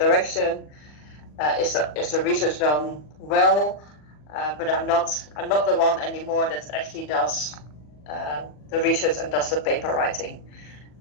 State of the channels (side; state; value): right; late; 40 ms